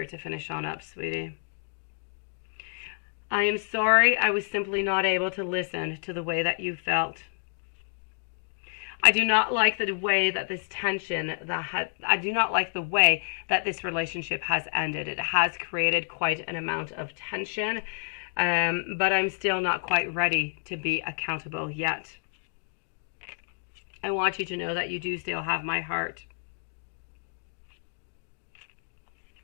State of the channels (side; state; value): right; silent; digital silence